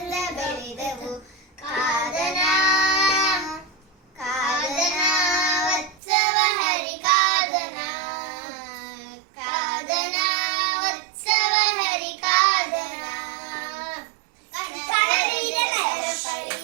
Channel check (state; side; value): drops out; left; at 6.0 s